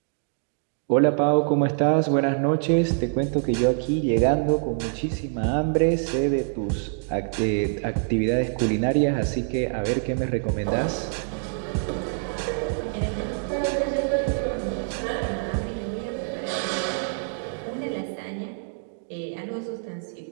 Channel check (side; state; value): left; silent; 61 dB below the other